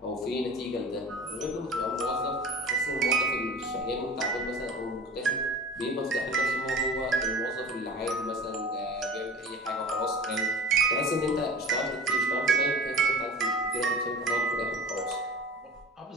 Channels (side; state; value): both; normal; correlation 0.37